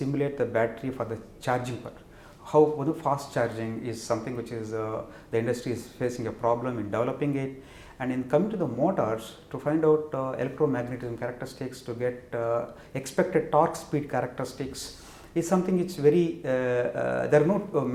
the battery for the charging part. How fast charging is something which is the industry is facing a problem in developing it. And in coming to the motors, to find out electromagnetism characteristics, to get expected torque speed characteristics, is something which very there are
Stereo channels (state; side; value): identical; both; correlation 1.00